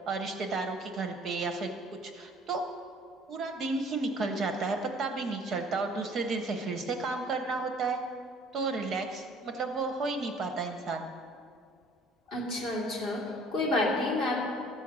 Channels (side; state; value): both; normal; correlation 0.54